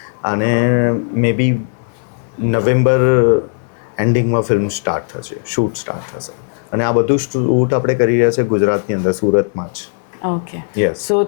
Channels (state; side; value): silent; right; 59 dB below the other